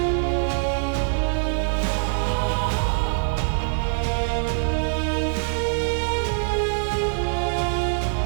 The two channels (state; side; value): silent; left; digital silence